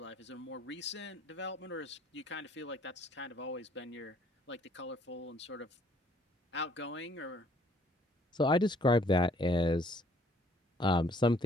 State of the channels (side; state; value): both; normal; correlation 0.62